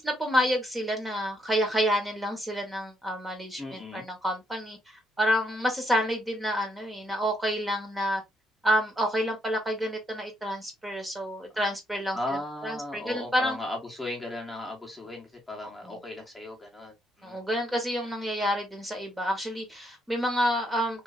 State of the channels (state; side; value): normal; both; correlation 0.75